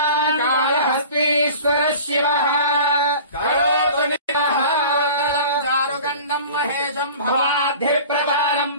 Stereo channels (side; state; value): both; inverted; correlation -0.41